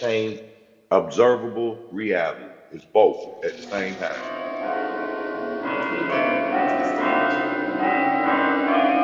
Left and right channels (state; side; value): identical; both; correlation 1.00